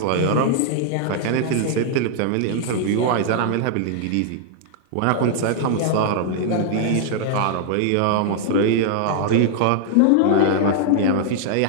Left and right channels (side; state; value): both; different; correlation -0.01